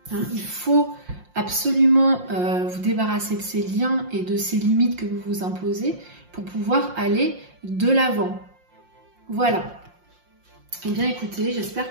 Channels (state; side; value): late; left; 5.6 ms